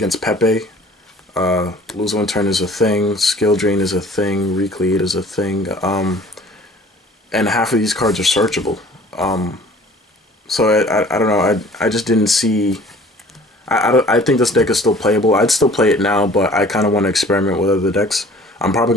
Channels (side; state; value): both; normal; correlation 0.50